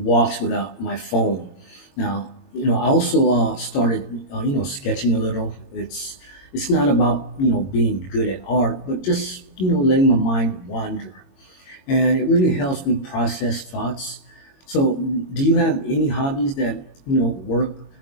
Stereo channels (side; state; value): right; late; 22 ms